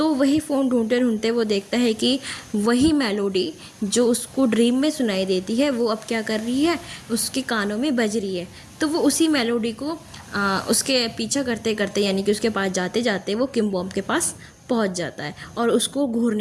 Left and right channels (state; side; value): identical; both; correlation 1.00